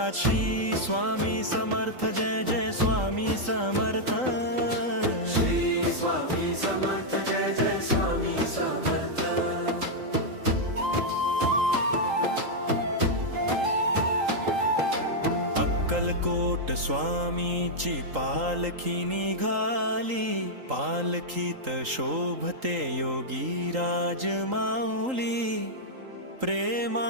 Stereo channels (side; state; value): left; late; 3.8 ms